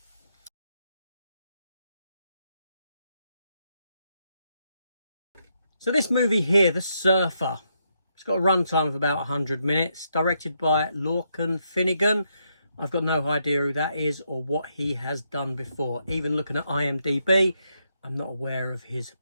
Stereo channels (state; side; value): inverted; both; correlation -0.79